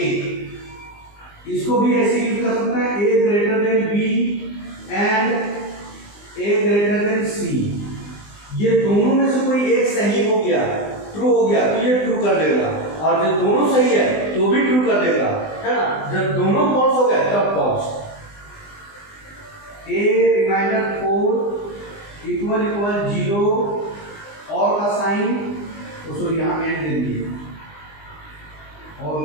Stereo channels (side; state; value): right; late; 20 ms